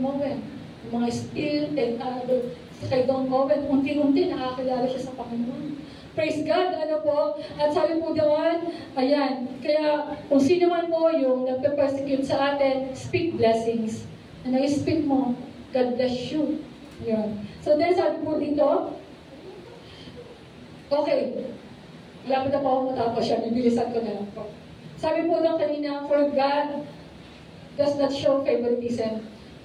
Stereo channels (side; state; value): both; identical; correlation 1.00